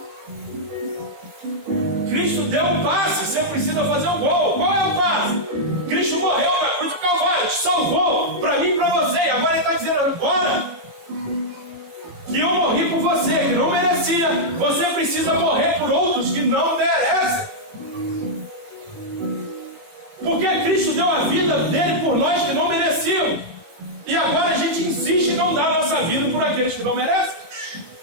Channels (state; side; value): late; left; 18 ms